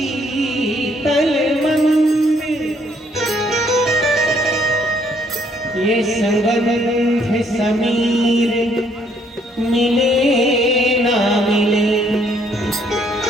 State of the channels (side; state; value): both; normal; correlation 0.67